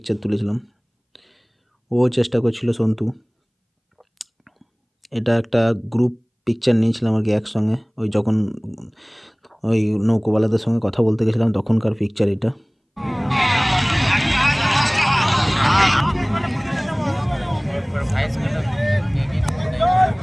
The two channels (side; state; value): both; identical; correlation 1.00